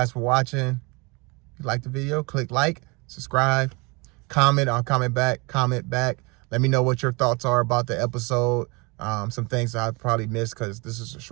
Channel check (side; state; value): left; quieter; 27.8 dB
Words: for watching. If you like the video, click like, subscribe, comment. I'll comment back. Let me know what your thoughts are about the episode. Some things I probably missed because this is a